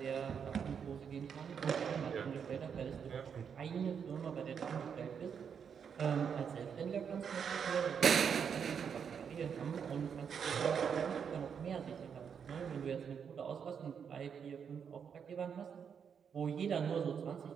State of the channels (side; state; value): left; quieter; 7.2 dB